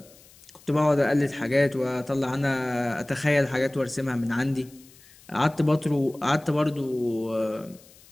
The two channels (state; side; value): noise; left; hiss, 25 dB below the sound